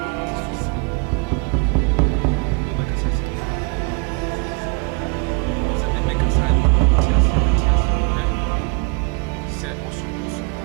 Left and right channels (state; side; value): quieter; left; 31.3 dB